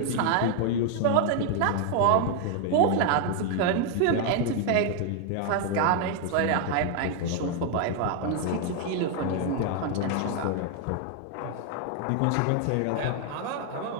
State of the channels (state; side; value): different; both; correlation 0.00